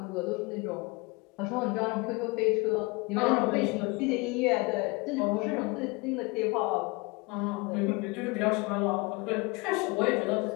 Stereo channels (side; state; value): right; quieter; 26.9 dB